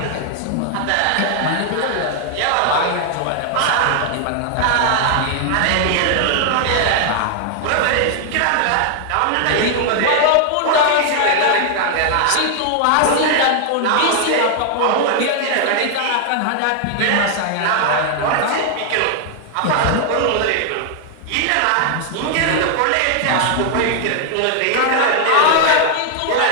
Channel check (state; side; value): different; both; correlation 0.00